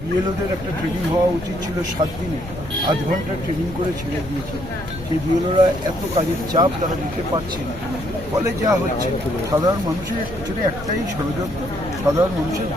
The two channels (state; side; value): noise; left; rumble, 13 dB below the sound